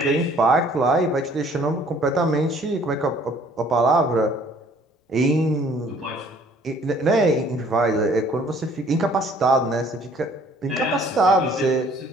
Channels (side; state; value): both; normal; correlation 0.57